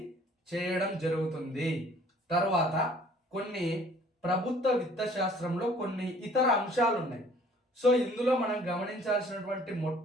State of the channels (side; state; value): both; normal; correlation 0.55